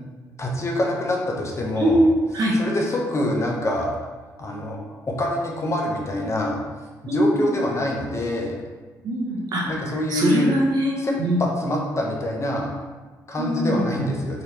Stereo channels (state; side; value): normal; both; correlation 0.73